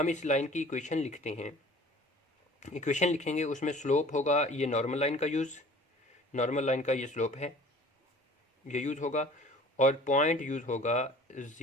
इस लाइन की इक्वेशन लिखते हैं, इक्वेशन लिखेंगे उसमें स्लोप होगा ये नॉर्मल लाइन का यूज़, नॉर्मल लाइन का ये स्लोप है, ये यूज़ होगा, और पॉइंट यूज़ होगा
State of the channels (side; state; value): both; normal; correlation 0.47